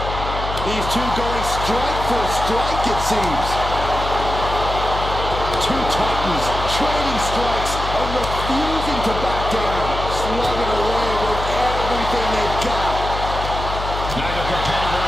These two going strike for strike, it seems. Two titans trading strikes and refusing to back down. Slugging away with everything they've got. Neither competitor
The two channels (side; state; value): left; noise; hum, 6 dB below the sound